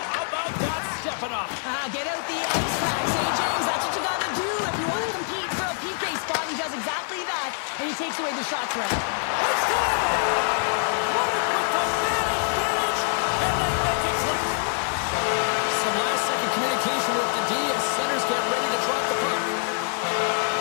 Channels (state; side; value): silent; right; 62 dB below the other